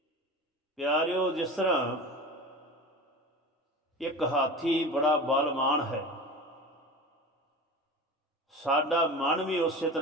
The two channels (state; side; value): normal; both; correlation 0.33